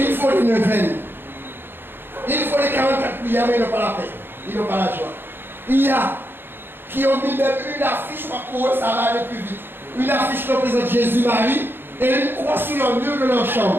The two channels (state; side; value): late; left; 0.10 ms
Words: faut les neuvaines. Il faut les 44 prières, mais ils n'ont pas la paix. Ils n'ont pas la joie. Il y a qui ont mis même une affiche pour eux, ça va aller plus vite. Une affiche qui représente Jésus-Marie et une croix sur le mur de leur